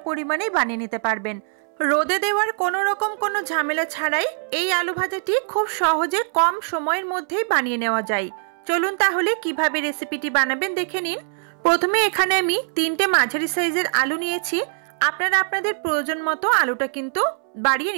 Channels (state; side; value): silent; left; 64 dB below the other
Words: পরিমাণেই বানিয়ে নিতে পারবেন। রোদে দেওয়ার কোনো রকম কোনো ঝামেলা ছাড়াই এই আলু ভাজাটি খুব সহজে কম সময়ের মধ্যেই বানিয়ে নেওয়া যায়। চলুন তাহলে কিভাবে রেসিপিটি বানাবেন দেখে নিন। প্রথমে এখানে আমি 3টে মাঝারি সাইজের আলু নিয়েছি। আপনারা আপনাদের প্রয়োজন মতো আলুটা কিন্তু বাড়িয়ে